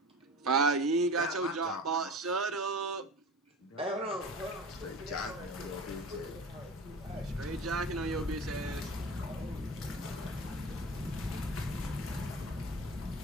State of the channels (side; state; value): both; normal; correlation 0.34